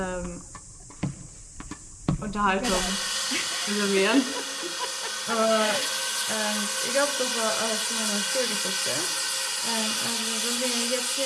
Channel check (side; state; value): both; identical; correlation 1.00